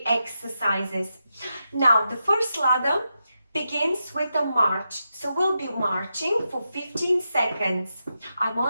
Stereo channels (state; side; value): inverted; both; correlation -0.86